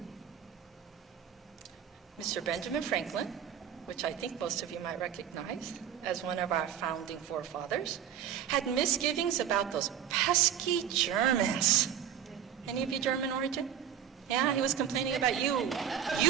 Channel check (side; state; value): left; quieter; 9.3 dB